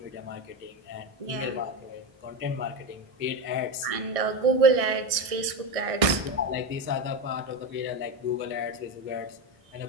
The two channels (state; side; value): late; left; 1.6 ms